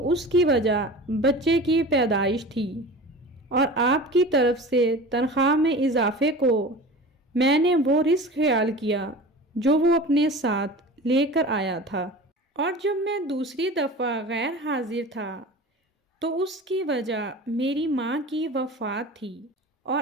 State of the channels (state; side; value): normal; both; correlation 0.36